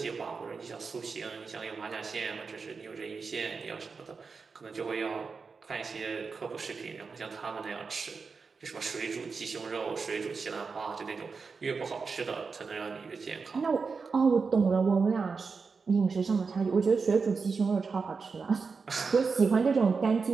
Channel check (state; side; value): quieter; left; 4.9 dB